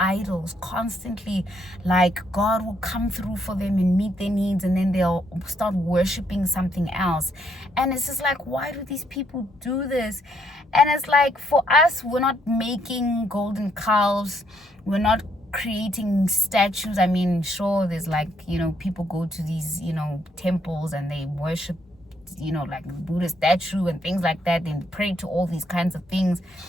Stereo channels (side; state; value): both; normal; correlation 0.72